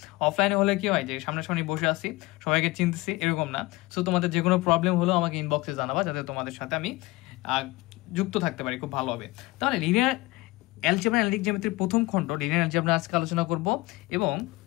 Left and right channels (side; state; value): right; quieter; 20.9 dB